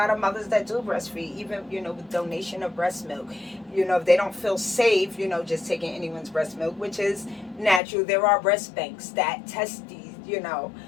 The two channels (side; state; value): right; drops out; at 7.8 s